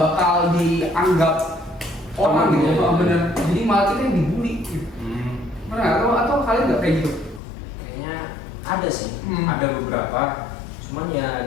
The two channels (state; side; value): drops out; right; at 7.4 s